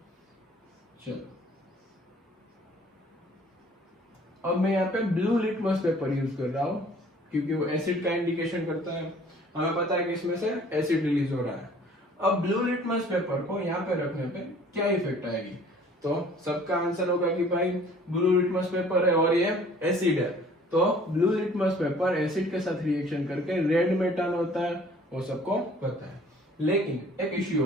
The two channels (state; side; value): normal; both; correlation 0.53